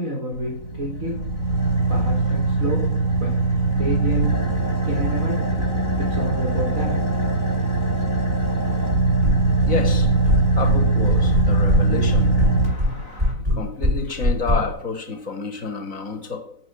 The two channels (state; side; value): late; left; 4.0 ms